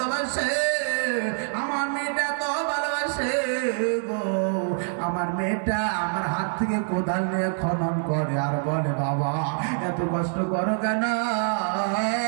আমার মেয়েটা তো ভালোবাসে গো, আমার মেয়েটা আমার হাত থেকে কোদাল নিয়ে খনন করে আর বলে বাবা এত কষ্ট করো কেন,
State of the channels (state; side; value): silent; left; digital silence